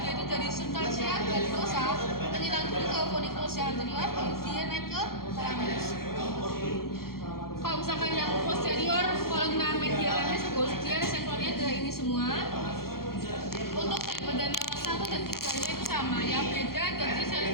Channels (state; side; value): late; right; 0.93 ms